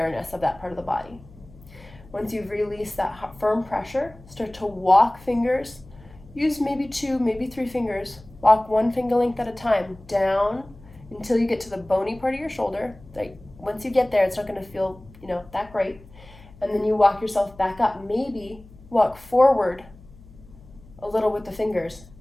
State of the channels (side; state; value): left; noise; hum, 22 dB below the sound